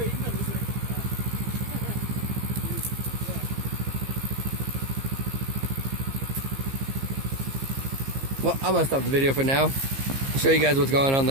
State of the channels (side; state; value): left; late; 15 ms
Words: Well, I'm gonna stop the video for now. I'll show you guys what's going on